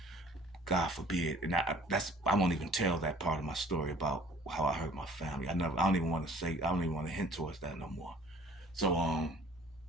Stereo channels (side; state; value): both; normal; correlation 0.53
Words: God forbid. And I won't even tell that part of my story about how I hurt my family. I don't even want to hint towards that no more. So